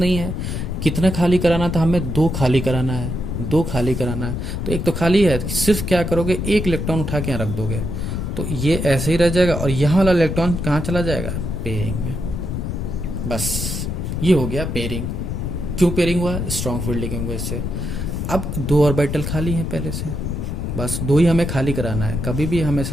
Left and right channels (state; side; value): noise; left; rumble, 3 dB below the sound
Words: है। कितना खाली कराना था हमें? 2 खाली कराना है, 2 खाली कराना है। तो एक तो खाली है, सिर्फ क्या करोगे? एक इलेक्ट्रॉन उठा के यहाँ रख दोगे, तो ये ऐसे ही रह जाएगा, और यहाँ वाला इलेक्ट्रॉन कहाँ चला जाएगा? पेयरिंग में। बस ये हो गया पेयरिंग। क्यों पेयरिंग हुआ? स्ट्रॉन्ग फील्ड लिगेंड वजह से। अब 2 ऑर्बिटल खाली है पहले से, बस 2 ही हमें खाली कराना है। कभी भी